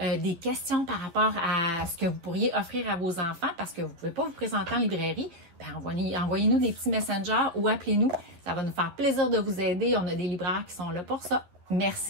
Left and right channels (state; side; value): late; left; 11 ms